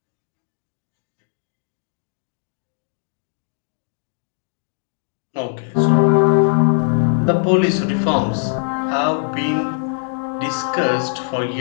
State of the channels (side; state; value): right; silent; digital silence